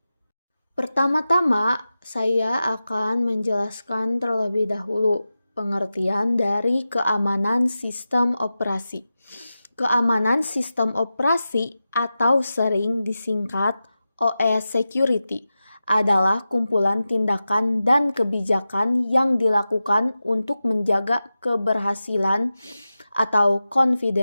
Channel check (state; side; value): inverted; both; correlation -0.93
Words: Pertama-tama, saya akan menjelaskan terlebih dahulu pengertian dari keamanan sistem operasi. Keamanan sistem operasi atau sering disingkat OS Security adalah kumpulan tindakan dan kebijakan yang dilakukan untuk menjaga keberhasilan atau